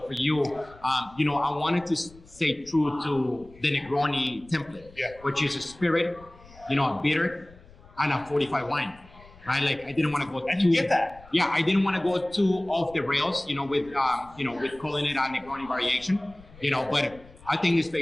for you, I wanted to stay true to the Negroni template, which is a spirit, a bitter, and a 45 wine. Right, I didn't want to go. And you get that. Yeah, I didn't want to go too off the rails, with calling it a Negroni variation, But I think it's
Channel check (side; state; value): left; noise; rumble, 23 dB below the sound